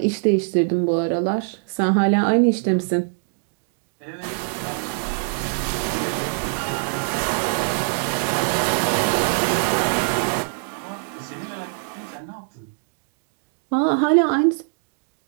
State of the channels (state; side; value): silent; left; digital silence